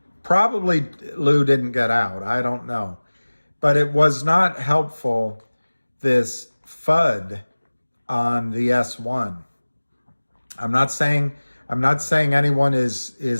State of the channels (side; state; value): both; inverted; correlation -1.00